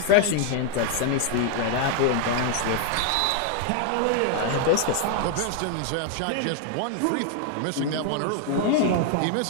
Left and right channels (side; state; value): both; different; correlation 0.00